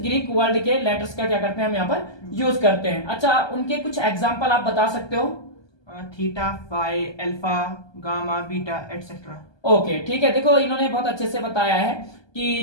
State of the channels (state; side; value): late; right; 1.2 ms